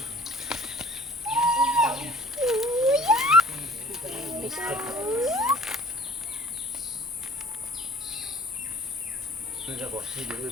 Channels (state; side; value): noise; left; hum, 29 dB below the sound